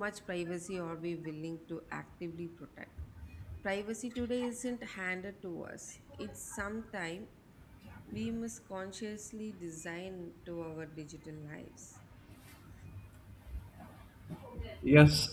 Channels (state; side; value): identical; both; correlation 1.00